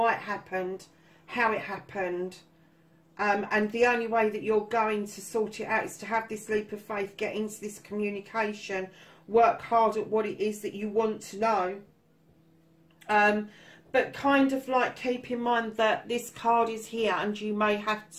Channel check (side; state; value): both; identical; correlation 1.00